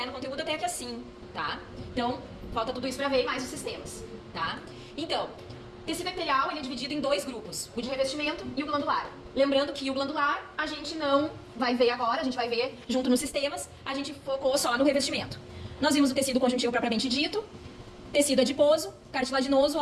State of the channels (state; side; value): identical; both; correlation 1.00